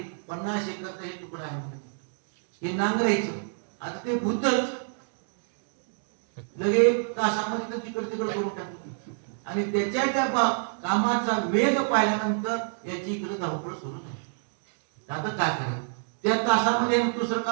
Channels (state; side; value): silent; left; 59 dB below the other